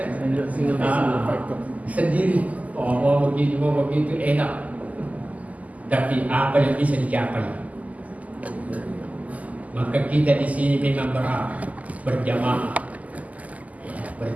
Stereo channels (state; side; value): late; left; 0.075 ms